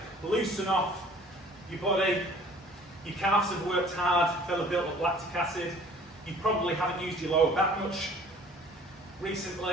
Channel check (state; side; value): normal; both; correlation 0.51